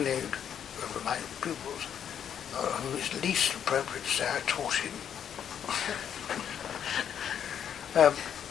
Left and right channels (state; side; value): quieter; right; 8.8 dB